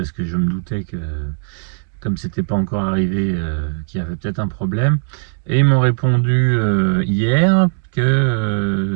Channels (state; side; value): silent; left; digital silence